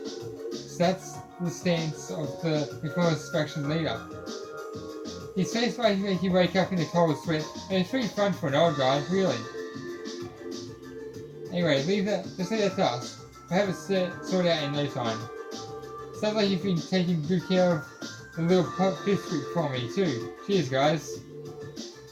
So that's the stance of the Reformist faction leader. His face might make you wake up in a cold sweat, and it's pretty fun for an old guy, really. Anyway, just leave that to us. We'll have it sorted out in no time. Sounds like you've been taking good care of the little pipsqueak for me too. Cheers, guys.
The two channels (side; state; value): both; identical; correlation 1.00